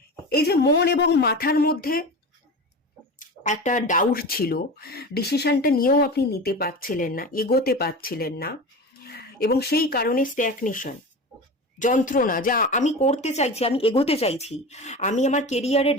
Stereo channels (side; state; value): both; normal; correlation 0.29